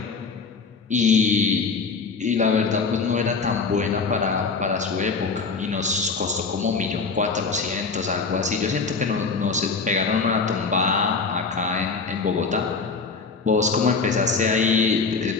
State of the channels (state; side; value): quieter; right; 4.7 dB